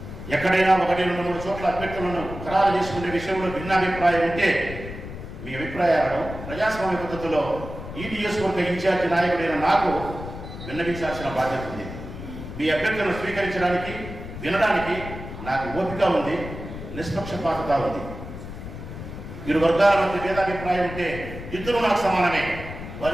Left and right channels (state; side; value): noise; left; rumble, 10 dB below the sound